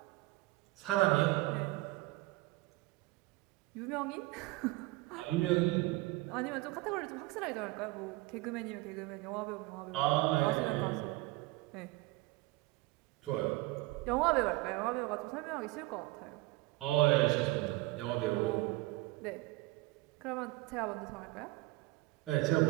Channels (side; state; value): left; quieter; 20.7 dB